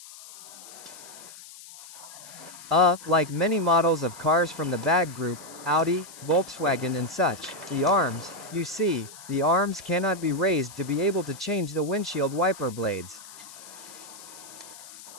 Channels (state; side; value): noise; left; hiss, 17 dB below the sound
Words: Like many models of cars from the BAG group, Audi, Volkswagen and such, the arms cannot be raised to be able to change the windshield wiper blades.